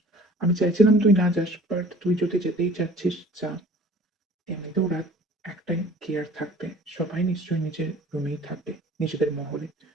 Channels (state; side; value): normal; both; correlation 0.48